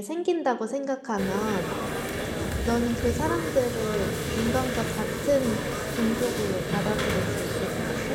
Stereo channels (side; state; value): both; identical; correlation 1.00